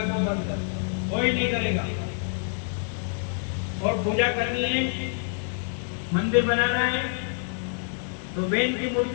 को बंद कर, कोई नहीं करेगा। और पूजा करनी है, मंदिर बनाना है तो वेद की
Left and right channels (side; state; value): right; silent; 60 dB below the other